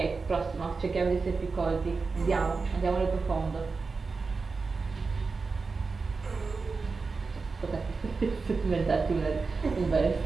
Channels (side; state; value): left; quieter; 4.4 dB